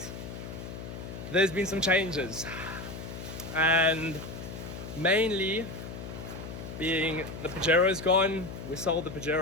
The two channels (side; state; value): left; noise; hum, 9 dB below the sound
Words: there's been some changes, and mainly being the Pajero's gone. We sold the